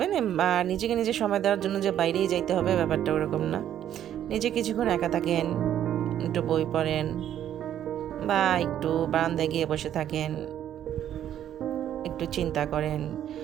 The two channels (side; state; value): left; quieter; 10.8 dB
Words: আর নিজেকে নিজে সময় দেওয়ার জন্য যে বাইরেই যাইতে হবে ব্যাপারটা ওরকম না। নিজে কিছুক্ষণ একা থাকেন, একটু বই পড়েন, বা একটু বারান্দায় গিয়ে বসে থাকেন, একটু চিন্তা করেন